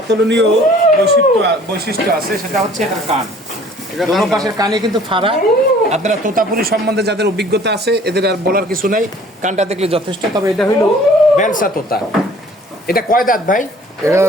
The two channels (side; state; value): both; normal; correlation 0.52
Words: বৈশিষ্ট্য আছে, সেটা হচ্ছে এটার কান। দোনো পাশের কানে কিন্তু ফাড়া। আপনারা তোতাপুরি সম্বন্ধে যাদের অভিজ্ঞতা আছে, এদের আর বলার কিছু নাই, কানটা দেখলে যথেষ্ট। তবে এটা হইল বেলসা তোতা। এটা কয় দাঁত ভাই? এটা